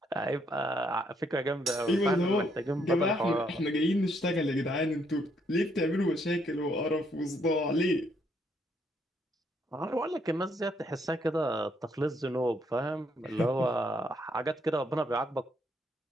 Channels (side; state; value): both; normal; correlation 0.72